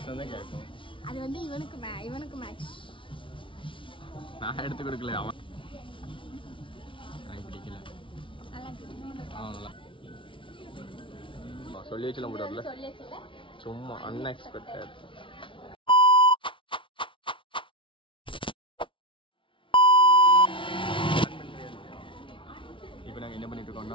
வந்து இவனுக்கு மேட்ச். நான் எடுத்து கொடுக்கல, அவன் எனக்கு பிடிக்கல. சொல்லி வச்சுலாம் போடாதுல, சும்மா அன்எக்ஸ்பெக்டட். இப்போ நாங்கள் என்ன பண்ணிட்டு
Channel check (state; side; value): late; right; 0.25 ms